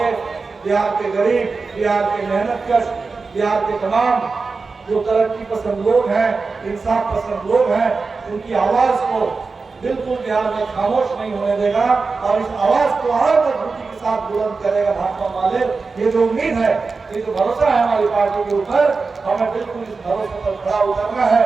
बिहार के गरीब, बिहार के मेहनतकश, बिहार के तमाम जो तरक्की पसंद लोग हैं, इंसाफ पसंद लोग हैं, उनकी आवाज को बिल्कुल बिहार में खामोश नहीं होने देगा और इस आवाज को और मजबूती के साथ बुलंद करेगा भाजपा वाले। ये जो उम्मीद है, ये जो भरोसा है हमारी पार्टी के ऊपर, हमें बिल्कुल इस भरोसे पर खड़ा उतरना है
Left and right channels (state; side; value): quieter; left; 4.3 dB